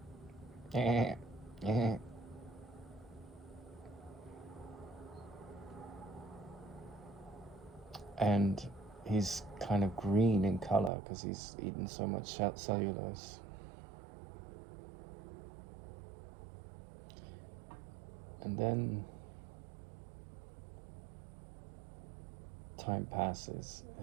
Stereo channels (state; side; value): drops out; left; at 10.9 s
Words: and he's kind of green in color because he's eaten so much cellulose. And then time passes,